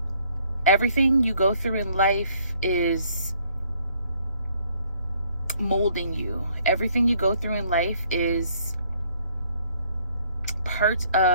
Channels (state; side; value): inverted; both; correlation -0.64